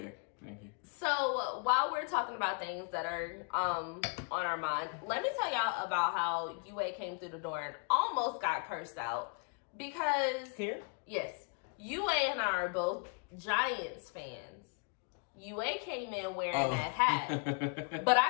Thank you. So, while we're talking about things that are on our mind, let me tell y'all about how UA came through the door and almost got cursed out. Because, yes, UA and I are both Giants fans. UA came in wearing that hat, but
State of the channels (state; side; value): quieter; right; 37.6 dB